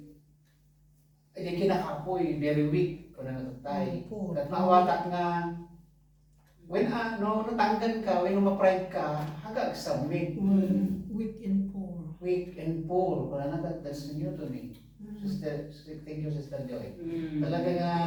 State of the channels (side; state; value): both; identical; correlation 1.00